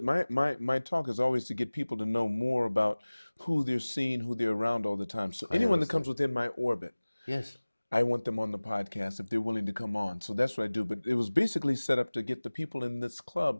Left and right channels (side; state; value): both; inverted; correlation -1.00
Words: My talk is always to get people to know more about who they're seeing, who they're around all the time. So anyone that comes within my orbit, Yes. I want them on the podcast if they're willing to come on. So that's what I do. But it was basically set up to get the people in this club